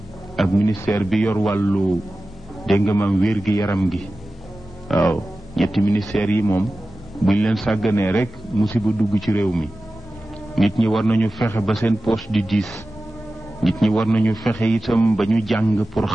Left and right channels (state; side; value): normal; both; correlation 0.95